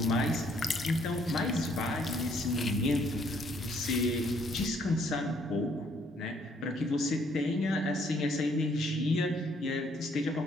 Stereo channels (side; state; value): both; normal; correlation 0.66